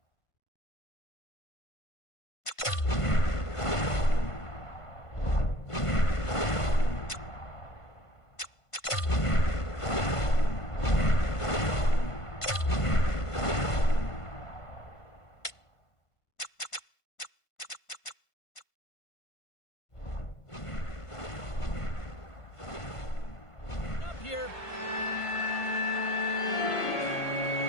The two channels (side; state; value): right; late; 1.5 ms